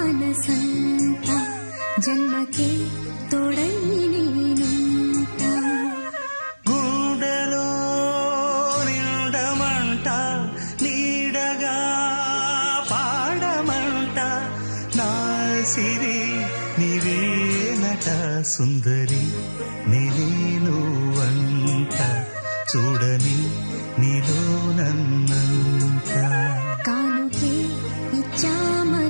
జన్మకే తోడై నేనుంట గుండెలో నిండమంట నీడగా పాడమంట నా సిరి నీవేనట సుందరి నీనువంట చూడని నీలో నన్నంత కానుకే ఇచ్చా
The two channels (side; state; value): both; inverted; correlation -1.00